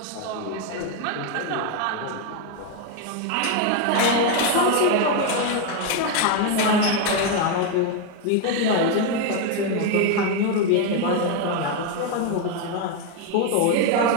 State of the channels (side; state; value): both; different; correlation 0.01